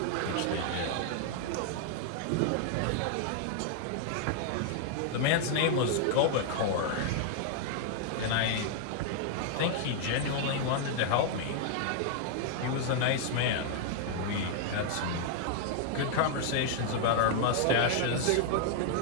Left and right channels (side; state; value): both; different; correlation 0.00